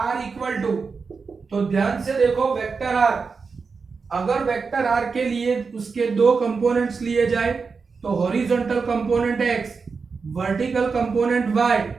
इक्वल टू, तो ध्यान से देखो वेक्टर आर, अगर वेक्टर आर के लिए उसके दो कंपोनेंट्स लिए जाए तो horizontal component x, vertical component y।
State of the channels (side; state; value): left; quieter; 5.0 dB